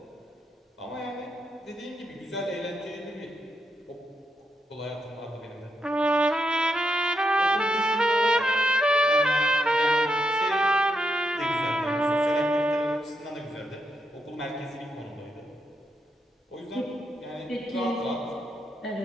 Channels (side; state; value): both; normal; correlation 0.82